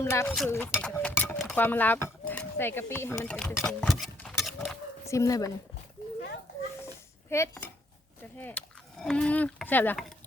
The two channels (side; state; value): both; normal; correlation 0.69